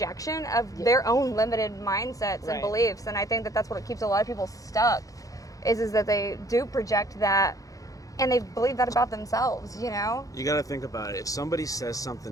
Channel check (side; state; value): right; late; 0.17 ms